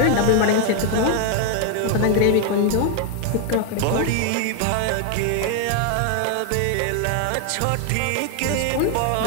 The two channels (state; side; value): different; both; correlation 0.00